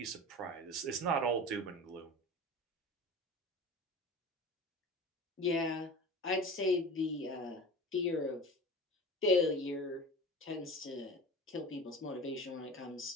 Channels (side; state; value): both; normal; correlation 0.35